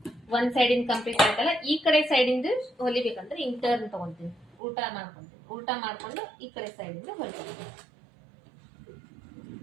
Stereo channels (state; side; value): drops out; left; at 4.5 s